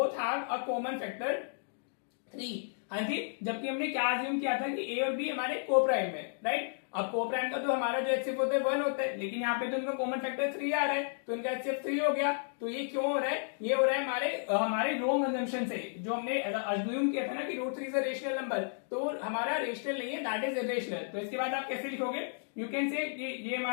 have a common factor 3। हाँ जी, जबकि हमने क्या अज्यूम किया था कि a और b हमारे को प्राइम है, राइट? अब को प्राइम का तो हमारा जो एचसीएफ होता है 1 होता है, लेकिन यहाँ पे तो उनका कॉमन फैक्टर 3 आ रहा है, तो इनका एचसीएफ 3 हो गया। तो ये क्यों हो रहा है, ये हो रहा है हमारे रॉन्ग अजम्पशन से, जो हमने अज्यूम किया था ना कि √3 इज अ रेशनल नंबर, तो हमारा रेशनल नहीं है, दैट इज इरेशनल। तो इसके बाद आप कैसे लिखोगे, यू कैन से ये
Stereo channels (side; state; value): right; silent; digital silence